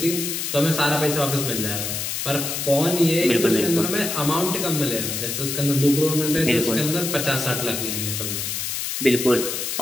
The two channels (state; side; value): noise; left; hiss, 3 dB below the sound